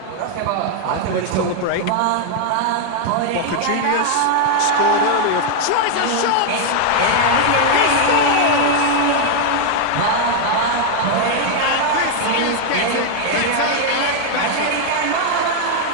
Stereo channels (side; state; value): both; different; correlation 0.00